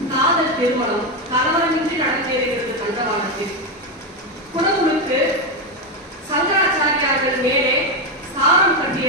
காதல் திருமணம் கலவரமின்றி நடந்தேறுகிறது தண்டவாளத்தில். குடமுழுக்கு சங்கராச்சாரியார்கள் மேலே சாரம்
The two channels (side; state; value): both; normal; correlation 0.09